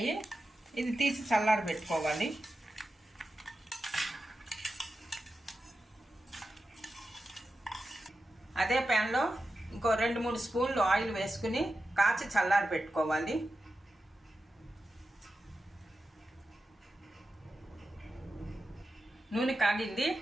ఇది తీసి చల్లారి పెట్టుకోవాలి. అదే ప్యాన్లో ఇంకో 2-3 స్పూన్లు ఆయిల్ వేసుకుని కాచి చల్లారి పెట్టుకోవాలి. నూనె కాగింది.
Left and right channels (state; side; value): normal; both; correlation 0.92